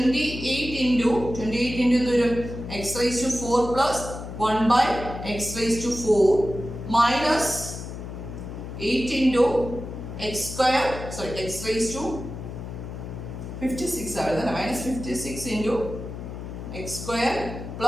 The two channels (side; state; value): left; noise; hum, 9 dB below the sound